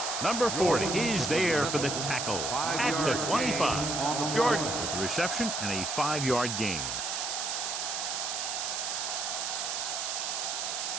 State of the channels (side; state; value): right; noise; hiss, 2 dB below the sound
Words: Number 40 is there for the tackle at the 25. Jordan with the reception and a 5-yard gain.